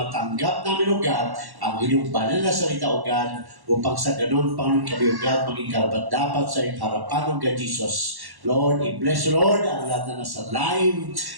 matanggap namin, O God, ang inyong banal na salita, O God, upang sa ganun, Panginoon, kami, O God, maging karapat-dapat sa iyong harapan, O God Jesus. Lord, i-bless, Lord, ang lahat na nasa live,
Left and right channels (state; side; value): late; left; 1.1 ms